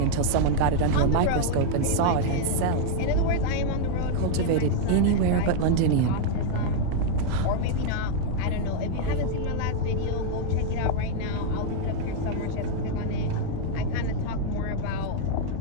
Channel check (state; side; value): different; both; correlation 0.00